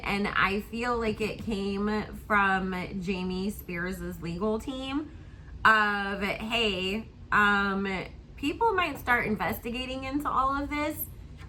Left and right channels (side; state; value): both; identical; correlation 1.00